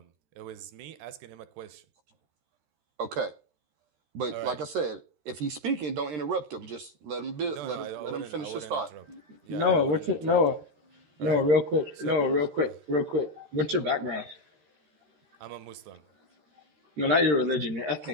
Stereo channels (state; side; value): late; left; 13 ms